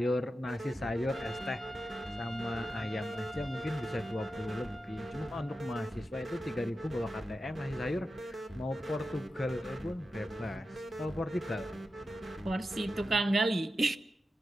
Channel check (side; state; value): both; normal; correlation 0.91